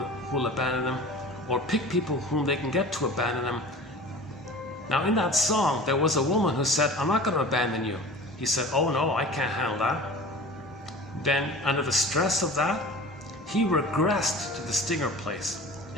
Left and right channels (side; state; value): both; normal; correlation 0.39